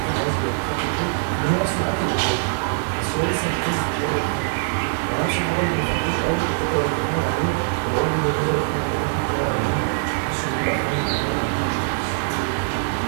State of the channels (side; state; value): left; silent; digital silence